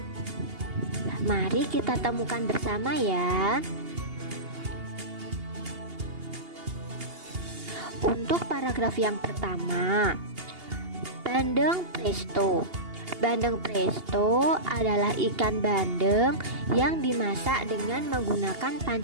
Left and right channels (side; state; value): left; late; 2.8 ms